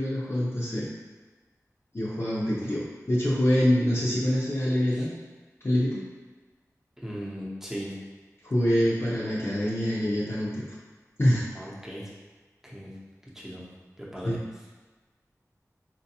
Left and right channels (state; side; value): normal; both; correlation 0.95